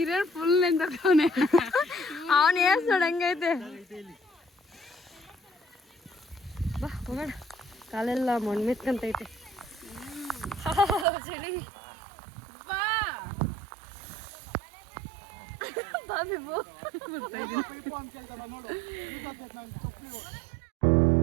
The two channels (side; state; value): left; drops out; at 11.1 s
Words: ಫುಲ್ ಎಂದವನೆ. ಅವನು ಏಸ್ ನೋಡಂಗೈತೆ. ಬಾ ಹೋಗೋಣ. ಕಾಲೆಲ್ಲ ಮಣ್ಣು ಮೆತ್ಕಂತೈತೆ. ಚಳಿ. ಬಾ ಬಾ ಬಿಬು.